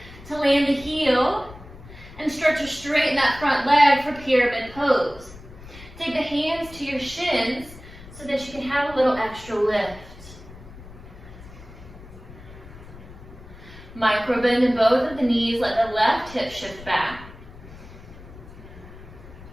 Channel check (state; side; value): noise; left; rumble, 17 dB below the sound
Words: to land the heel, and start to straighten that front leg for pyramid pose. Take the hands to your shins so that you can have a little extra lift. Micro bend in both of the knees, let the left hip shift back.